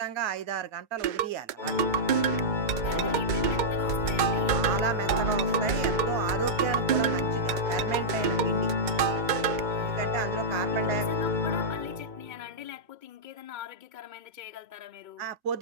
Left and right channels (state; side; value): late; left; 2.2 ms